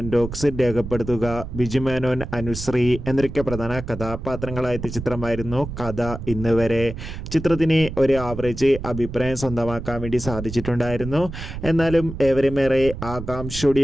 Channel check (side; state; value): right; noise; rumble, 9 dB below the sound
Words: ബോക്സിൽ രേഖപ്പെടുത്തുക. ബിജു മേനോൻ, അനുശ്രീ എന്നൊക്കെ പ്രധാന കഥാപാത്രങ്ങളായ ചിത്രമായിരുന്നു കഥ ഇന്ന് വരെ. ചിത്രത്തിന് ഒരു ആവറേജ് അഭിപ്രായം സ്വന്തമാക്കാൻ വേണ്ടി സാധിച്ചിട്ടുണ്ടായിരുന്നു. എന്നാലും ഏവരുമേറെ